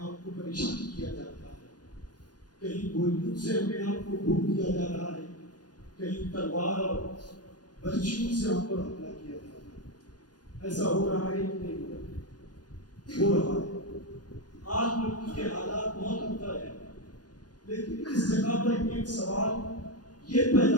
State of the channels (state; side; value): late; right; 0.69 ms